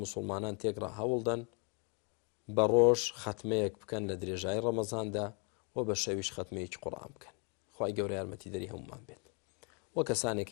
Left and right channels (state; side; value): quieter; right; 35.7 dB